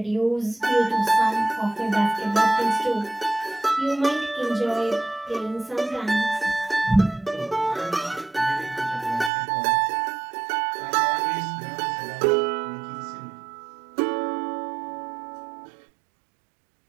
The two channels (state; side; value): drops out; left; at 9.3 s